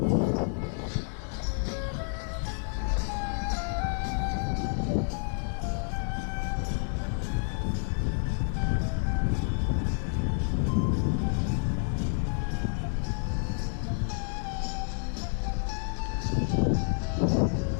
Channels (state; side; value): silent; right; 58 dB below the other